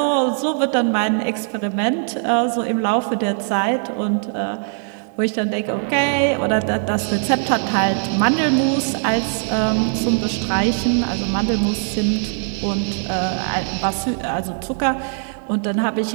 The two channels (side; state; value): left; silent; 65 dB below the other